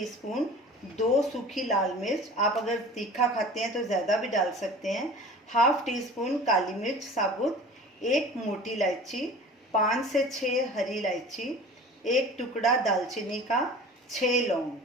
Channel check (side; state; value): both; normal; correlation 0.41